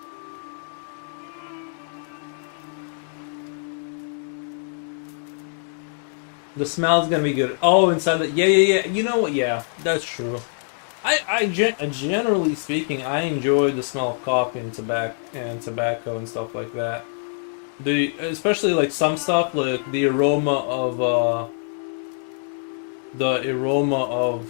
The smell's gonna be good. Oh, inside the yeah. You know what? Yeah, that's true. Generally speaking, I enjoy the smell of coffee and tobacco and stuff like that. Especially like some stuff like the aroma of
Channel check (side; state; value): right; silent; digital silence